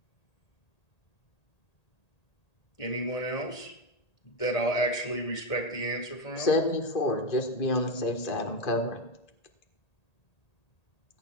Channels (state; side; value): late; right; 1.8 ms